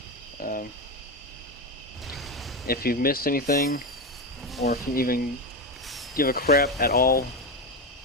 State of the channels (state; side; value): normal; both; correlation 0.15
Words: If you've missed anything, or if you even give a crap at all